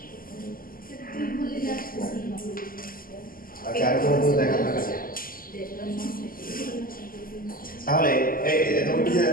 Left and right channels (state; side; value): late; right; 0.42 ms